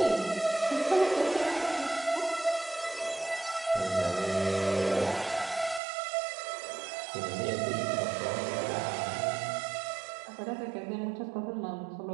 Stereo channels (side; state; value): left; drops out; at 5.8 s